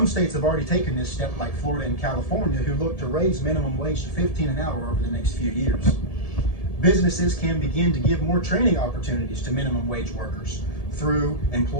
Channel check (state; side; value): late; right; 1.7 ms